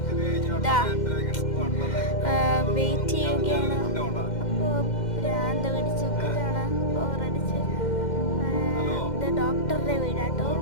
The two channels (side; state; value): right; late; 2.1 ms